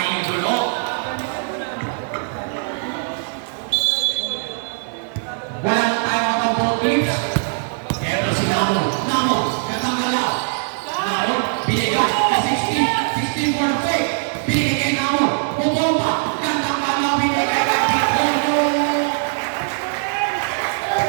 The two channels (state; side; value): silent; left; 65 dB below the other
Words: idolo. Wala na tayo ang ball teams. Pero si Namo, gandang galaw. Namo, binigay ka 16 for the fake. Binigay kay Namo, bumomba. Gandang galaw, binigay kay Pitono.